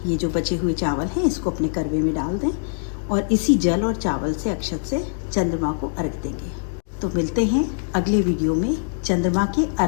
ये जो बचे हुए चावल हैं इसको अपने करवे में डाल दें और इसी जल और चावल से, अक्षत से चंद्रमा को अर्घ देंगे। तो मिलते हैं अगले वीडियो में चंद्रमा के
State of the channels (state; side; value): silent; right; digital silence